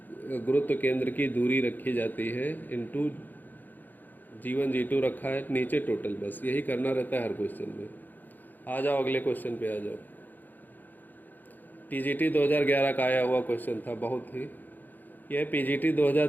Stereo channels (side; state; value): right; late; 0.086 ms